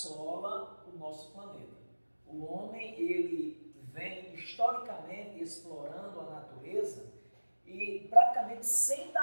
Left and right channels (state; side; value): inverted; both; correlation -1.00